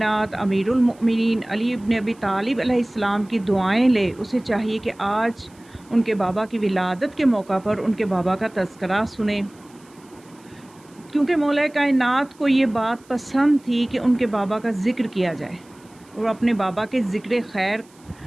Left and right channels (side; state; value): right; noise; hiss, 29 dB below the sound